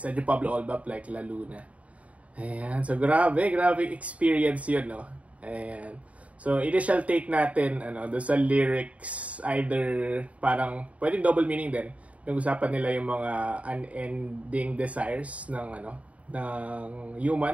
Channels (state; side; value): late; left; 0.067 ms